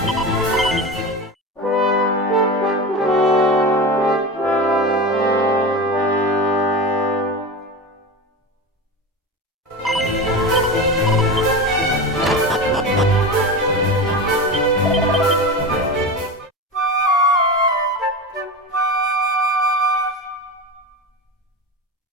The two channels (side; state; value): both; normal; correlation 0.25